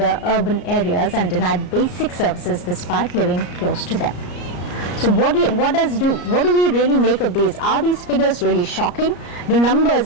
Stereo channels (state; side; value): late; right; 34 ms